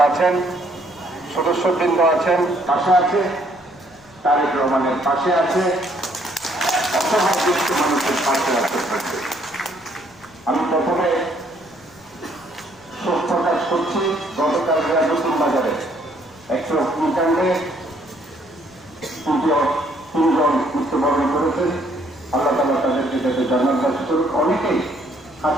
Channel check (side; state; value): left; noise; rumble, 29 dB below the sound